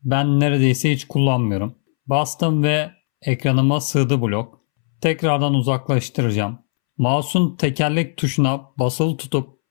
Ben neredeyse hiç kullanmıyorum. Bastım ve ekranıma sığdı blok. Tekrardan uzaklaştıracağım. Mouse'un tekerlek tuşuna basılı tutup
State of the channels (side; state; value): right; silent; 67 dB below the other